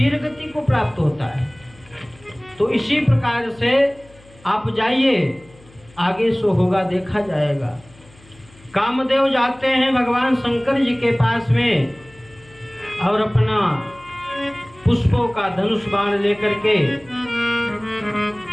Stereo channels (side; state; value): left; noise; hum, 26 dB below the sound